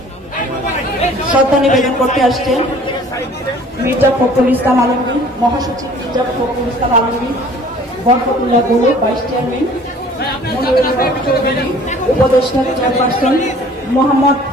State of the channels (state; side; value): normal; both; correlation 0.51